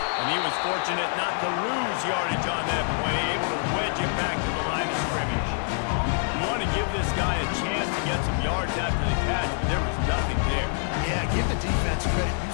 he was fortunate not to lose yardage on that play, able to wedge it back to the line of scrimmage. You want to give this guy a chance to get some yards after the catch, but there was nothing there. Yeah, give the defense credit. You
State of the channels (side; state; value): right; silent; 59 dB below the other